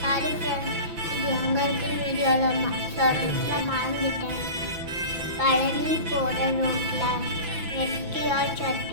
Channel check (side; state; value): left; late; 5.9 ms